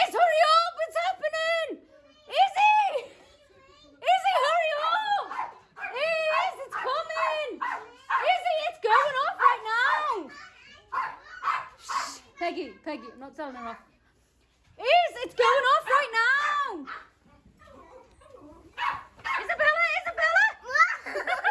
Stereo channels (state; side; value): identical; both; correlation 1.00